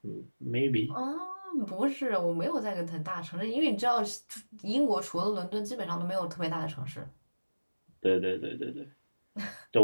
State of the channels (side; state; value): both; inverted; correlation -1.00